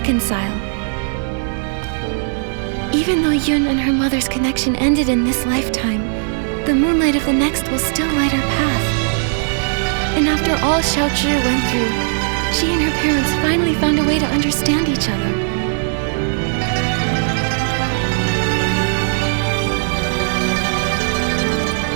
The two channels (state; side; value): silent; left; digital silence